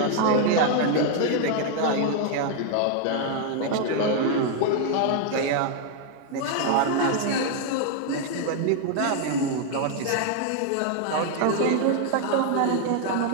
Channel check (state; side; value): different; both; correlation 0.00